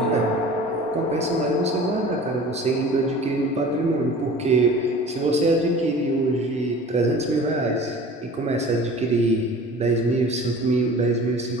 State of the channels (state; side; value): normal; both; correlation 0.42